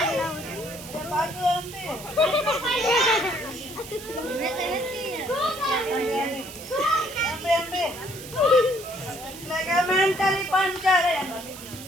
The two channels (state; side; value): noise; right; hiss, 14 dB below the sound